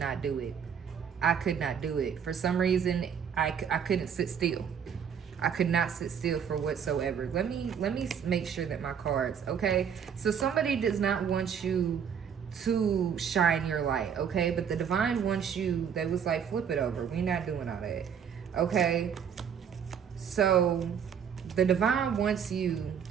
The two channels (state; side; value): quieter; left; 7.7 dB